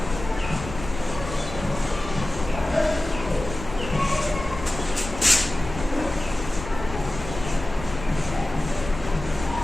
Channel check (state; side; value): noise; left; rumble, 11 dB below the sound